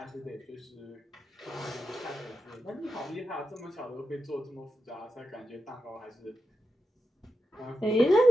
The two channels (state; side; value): normal; both; correlation 0.87